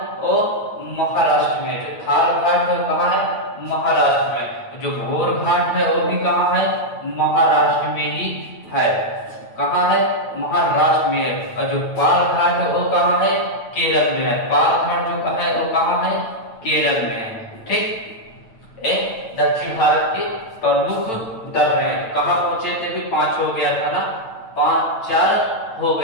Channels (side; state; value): right; late; 9.0 ms